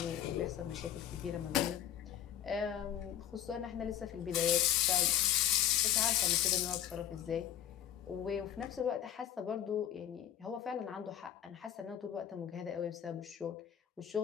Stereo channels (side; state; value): right; quieter; 10.3 dB